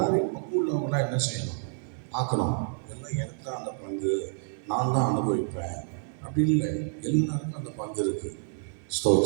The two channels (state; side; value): silent; left; 59 dB below the other